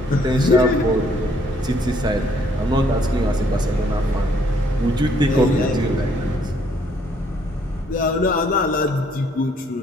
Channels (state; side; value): normal; both; correlation 0.66